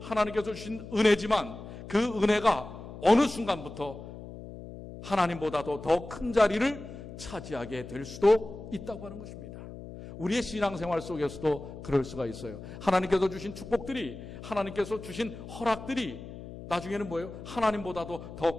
하나님께서 주신 은혜지만 그 은혜가 어느 순간부터 하나님보다도 더 큰 자리를 차지하게 될 수도 있다고 하는 것입니다. 우리의 신앙생활 속에서도 그럴 수가 있어요. 하나님께서 주신 축복들이, 하나님께서 주신 허락들이 나중에는 뭐예요? 하나님보다도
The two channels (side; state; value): left; noise; hum, 12 dB below the sound